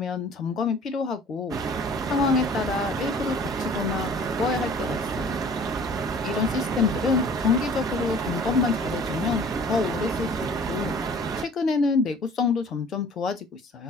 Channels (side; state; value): both; normal; correlation 0.50